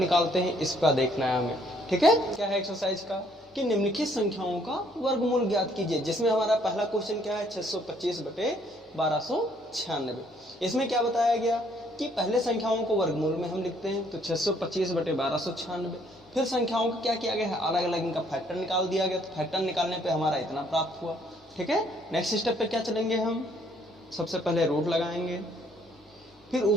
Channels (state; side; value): normal; both; correlation 0.65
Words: हैं इसका देखना है हमें। ठीक है, क्या है एक्सरसाइज का कि निम्नलिखित संख्याओं का वर्गमूल ज्ञात कीजिए। जिसमें हमारा पहला क्वेश्चन क्या है, 625 बटे 1296। इसमें क्या बताया गया कि पहले संख्याओं को वर्गमूल में हम लिखते हैं, तो 625 बटे 1296। फिर संख्याओं को क्या किया गया है, अलग अलग इनका फैक्टर निकाल दिया गया। तो फैक्टर निकालने पे हमारा इतना प्राप्त हुआ। ठीक है, नेक्स्ट स्टेप पे क्या चलेंगे हम, सबसे पहले रूट लगाएंगे। फिर